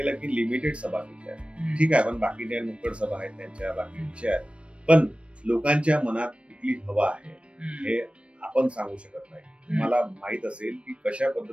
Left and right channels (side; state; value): left; late; 0.060 ms